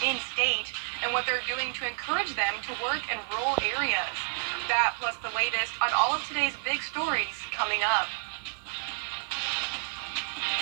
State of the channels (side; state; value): left; silent; digital silence